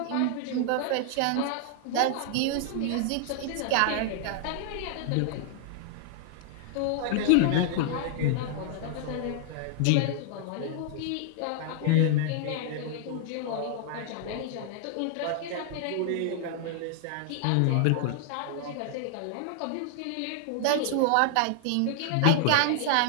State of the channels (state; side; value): different; both; correlation -0.01